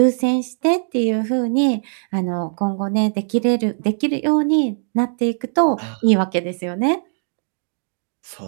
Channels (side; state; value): left; silent; digital silence